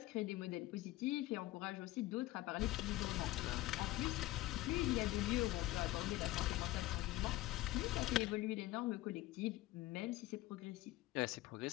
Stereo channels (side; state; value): right; quieter; 17.3 dB